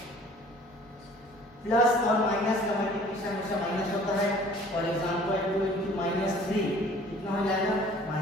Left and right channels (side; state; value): both; normal; correlation 0.51